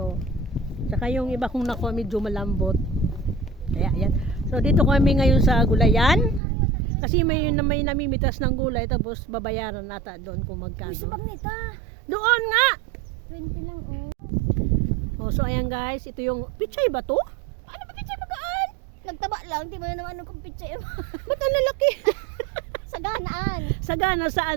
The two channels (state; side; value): drops out; left; at 6.4 s